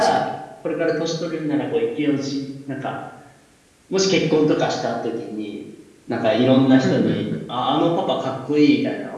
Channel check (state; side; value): identical; both; correlation 1.00